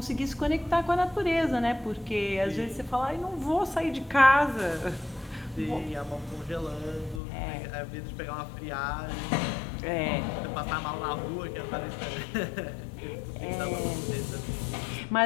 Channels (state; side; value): drops out; right; at 7.2 s